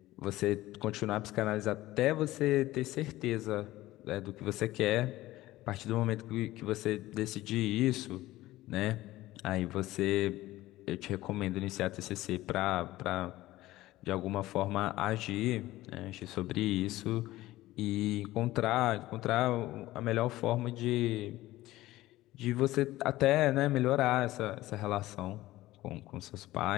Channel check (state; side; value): quieter; right; 16.8 dB